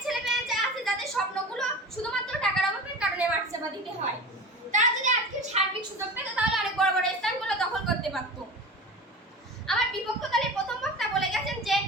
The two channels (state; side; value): normal; both; correlation 0.33